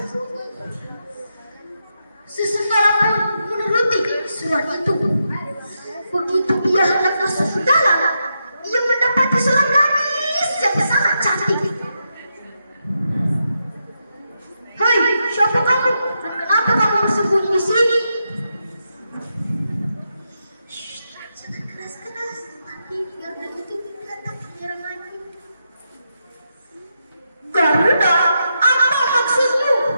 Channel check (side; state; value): both; inverted; correlation -0.84